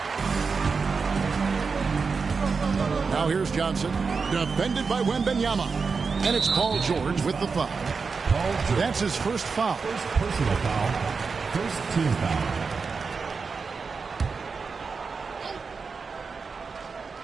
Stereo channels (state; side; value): quieter; left; 5.0 dB